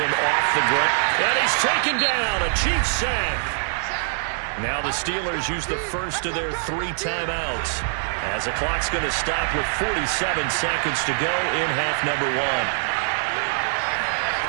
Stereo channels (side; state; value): left; silent; digital silence